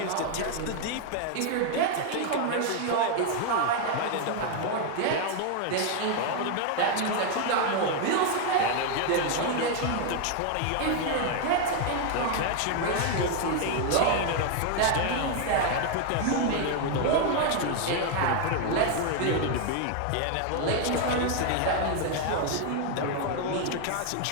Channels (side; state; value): both; different; correlation 0.01